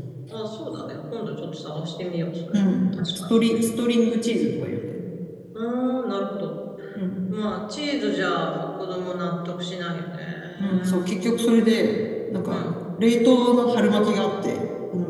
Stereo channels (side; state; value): both; identical; correlation 1.00